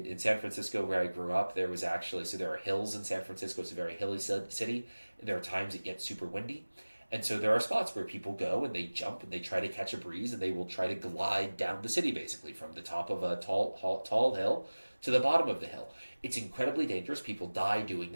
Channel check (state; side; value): inverted; both; correlation -1.00